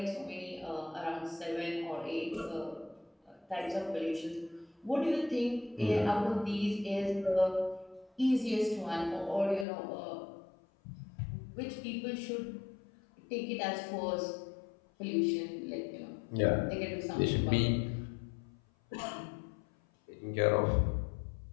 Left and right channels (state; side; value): drops out; right; at 9.7 s